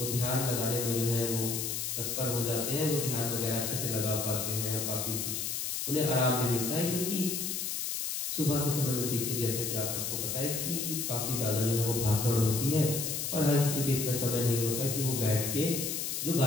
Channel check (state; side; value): noise; left; hiss, 2 dB below the sound